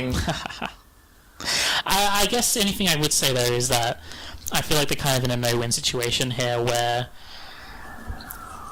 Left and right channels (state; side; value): identical; both; correlation 1.00